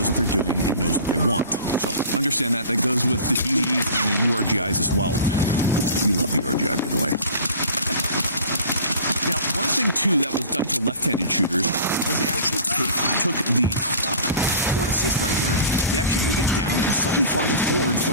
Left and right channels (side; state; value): both; inverted; correlation -0.41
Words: what they're doing and knows what they want. So understand that. That goes with the DDs and the URGIs as well. We love the URGI, by the way. Now, one thing too that was done for left-handed shooters was they actually took the port assist right here. They actually moved it down and slightly farther forward